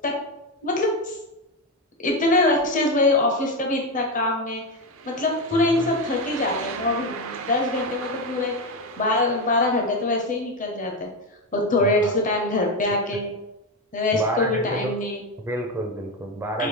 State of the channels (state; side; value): normal; both; correlation 0.12